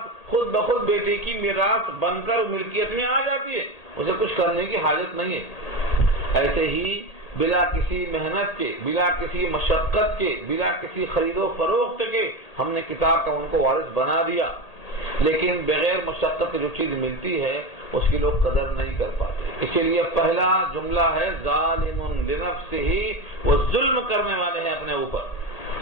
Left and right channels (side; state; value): right; late; 1.8 ms